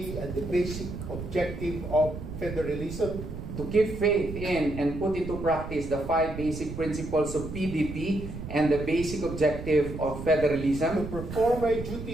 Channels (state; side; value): noise; right; rumble, 8 dB below the sound